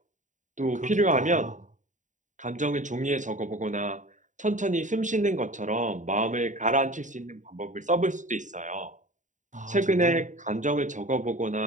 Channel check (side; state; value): left; late; 0.36 ms